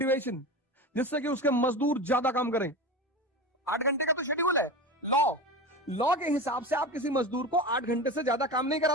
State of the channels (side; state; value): both; normal; correlation 0.27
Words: जिससे कि उसके मजदूर ज्यादा काम करें। 8 घंटे का तो शेड्यूल है, लॉ के हिसाब से आप किसी मजदूर को 8 घंटे से ज्यादा काम नहीं